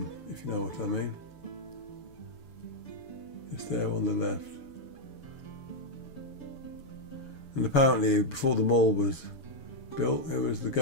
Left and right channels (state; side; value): late; right; 7.0 ms